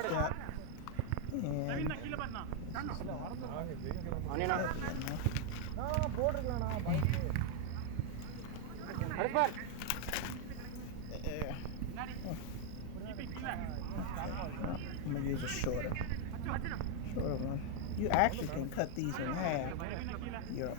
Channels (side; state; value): both; different; correlation 0.00